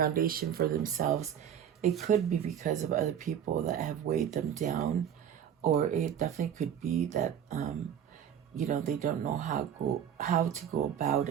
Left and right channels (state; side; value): quieter; left; 9.1 dB